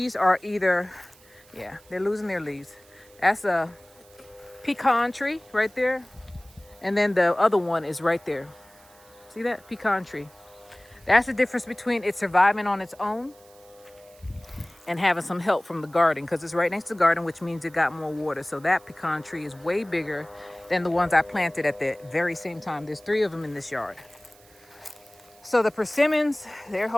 are either, yeah, they're losing their leaves. That's a pecan tree right there. And then the other one is right there. See that? Pecan tree. That's the difference between it surviving on its own and having some help from the garden, because it's right next to the garden, which means it got more water. So that pecan tree is way bigger than the ones I planted at the very same time. There's 3 of them in this yard. So the persimmons, they're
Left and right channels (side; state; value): right; noise; hiss, 27 dB below the sound